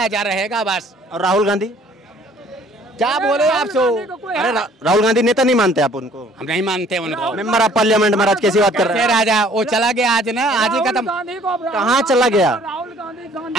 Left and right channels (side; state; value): both; normal; correlation 0.57